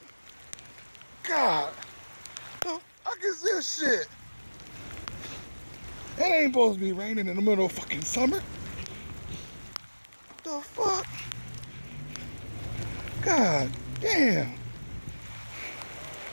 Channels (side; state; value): both; inverted; correlation -1.00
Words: God. The fuck is this shit? It ain't supposed to be raining in the middle of fucking summer. The fuck? God damn.